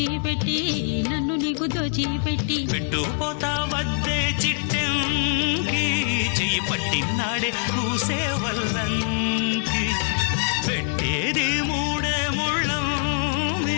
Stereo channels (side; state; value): right; silent; 58 dB below the other